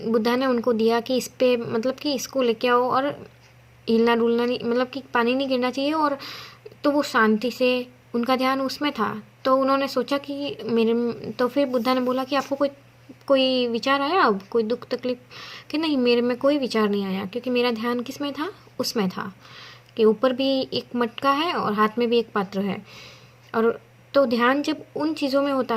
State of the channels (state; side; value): identical; both; correlation 1.00